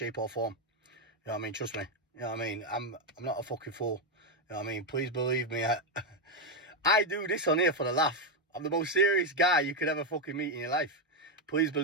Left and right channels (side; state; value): both; normal; correlation 0.05